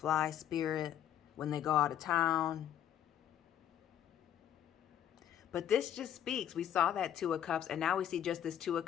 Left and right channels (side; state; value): right; quieter; 10.5 dB